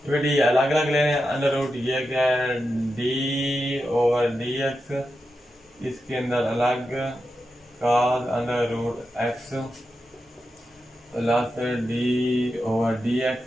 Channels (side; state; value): both; normal; correlation 0.89